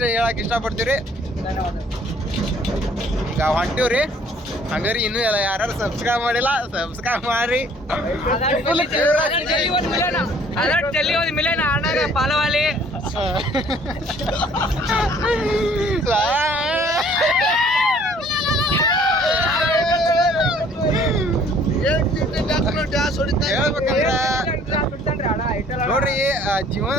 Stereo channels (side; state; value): both; normal; correlation 0.57